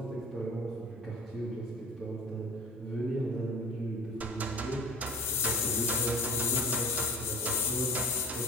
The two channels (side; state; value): both; normal; correlation 0.40